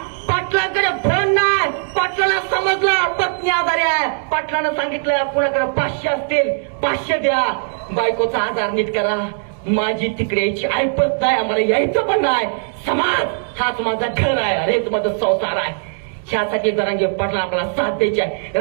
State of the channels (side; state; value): left; silent; digital silence